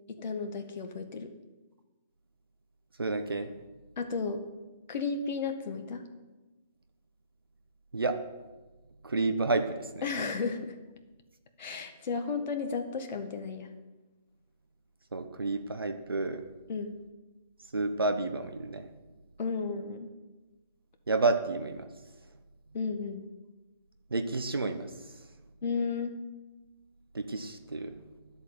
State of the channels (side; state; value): both; inverted; correlation -0.53